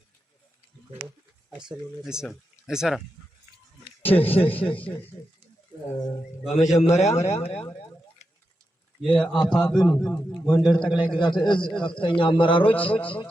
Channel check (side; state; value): both; normal; correlation 0.88